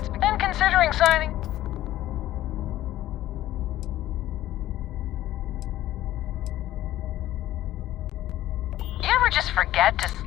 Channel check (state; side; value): quieter; right; 14.2 dB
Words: been considering signing. You ever just forget to...